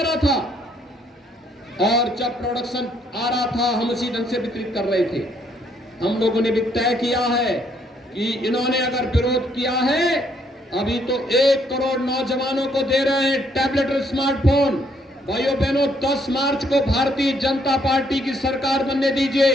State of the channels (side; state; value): both; normal; correlation 0.69